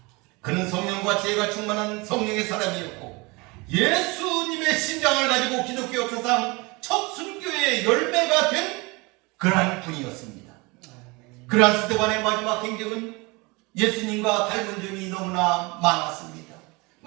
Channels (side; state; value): left; quieter; 26.0 dB